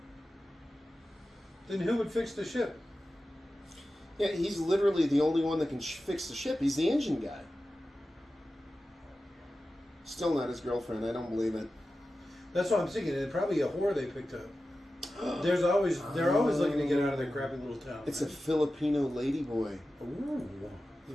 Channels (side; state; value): both; normal; correlation 0.93